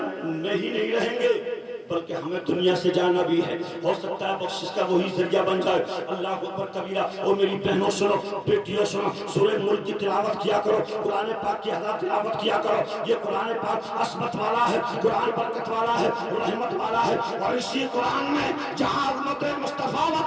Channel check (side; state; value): both; identical; correlation 1.00